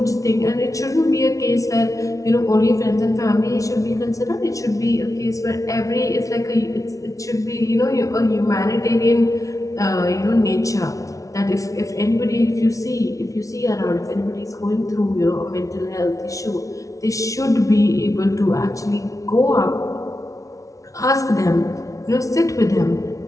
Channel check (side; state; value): right; late; 0.16 ms